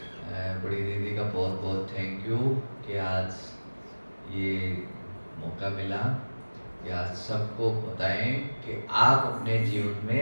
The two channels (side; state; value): both; inverted; correlation -1.00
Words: बड़ी दीदी का बहुत बहुत थैंक यू कि आज ये मौका मिला कि आज सबको बताएं कि आप अपने जीवन